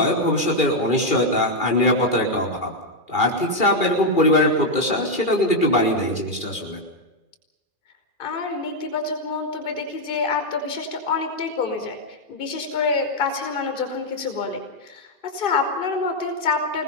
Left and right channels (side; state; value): right; late; 2.4 ms